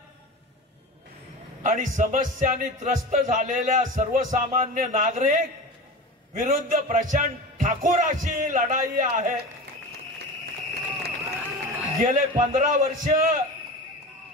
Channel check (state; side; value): normal; both; correlation 0.30